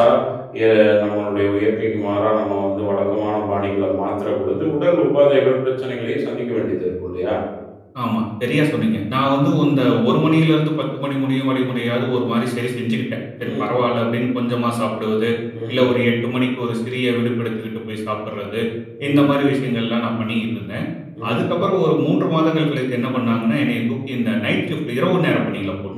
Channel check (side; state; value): both; identical; correlation 1.00